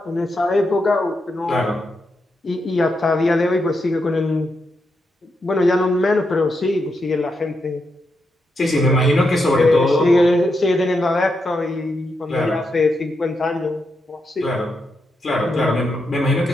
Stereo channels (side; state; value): both; normal; correlation 0.84